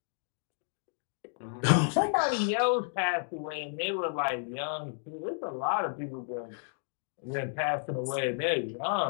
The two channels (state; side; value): silent; right; digital silence